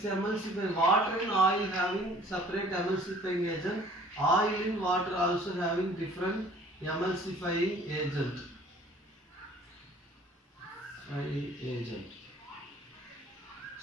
water and oil having separate emulsifying agent. Oil in water also having different emulsifying agent.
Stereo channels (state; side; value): normal; both; correlation 0.53